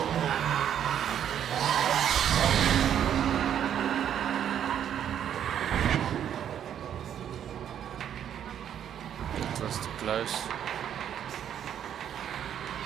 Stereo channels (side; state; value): left; quieter; 9.6 dB